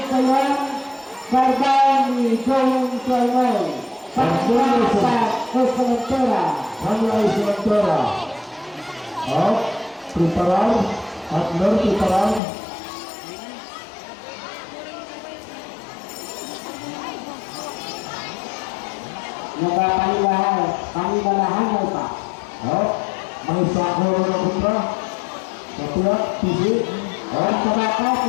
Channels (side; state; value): right; drops out; at 12.4 s